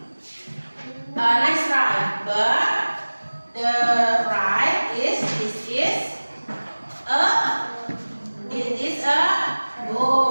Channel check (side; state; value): both; inverted; correlation -1.00